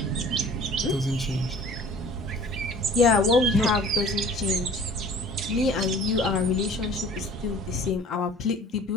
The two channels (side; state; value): both; normal; correlation 0.48